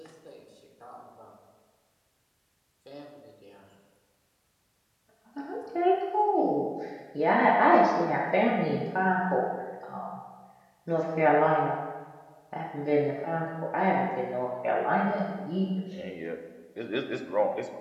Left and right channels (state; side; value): identical; both; correlation 1.00